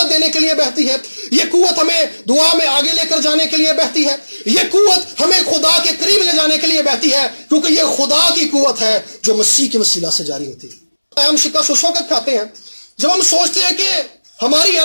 دینے کے لیے بہتی ہے. یہ قوت ہمیں دعا میں آگے لے کر جانے کے لیے بہتی ہے. یہ قوت ہمیں خدا کے قریب لے جانے کے لیے بہتی ہے, کیونکہ یہ خدا کی قوت ہے جو مسیح کے وسیلہ سے جاری ہوتی ہے. ہم شکست اس وقت کھاتے ہیں جب ہم سوچتے ہیں کہ ہماری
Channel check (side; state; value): both; inverted; correlation -1.00